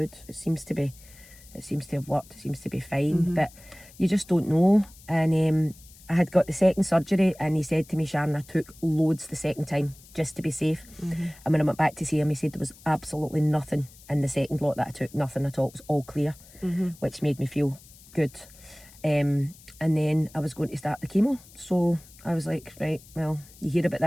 it seems to have worked. It seems to be fine. But you just don't know. And I had got the second surgery, and he said to me, Sharon, I took loads the second time just to be safe. And when I went back to see him, he said there was absolutely nothing in the second lot that I took, nothing at all. It was all clear, which made me feel good. And then I was going to start the chemo. So I was like, right, well, you hear about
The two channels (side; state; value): left; noise; hiss, 23 dB below the sound